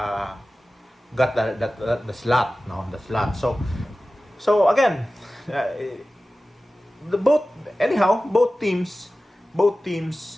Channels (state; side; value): normal; both; correlation 0.96